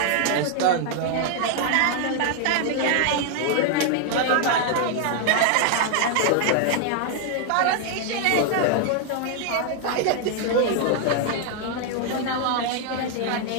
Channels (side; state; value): both; different; correlation 0.00